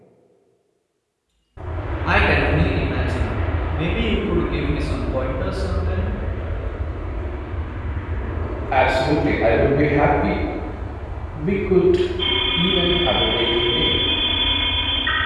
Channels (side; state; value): both; identical; correlation 1.00